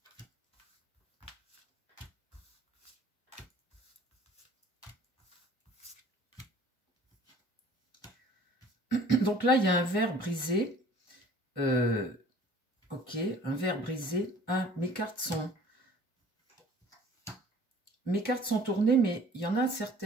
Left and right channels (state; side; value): normal; both; correlation 0.51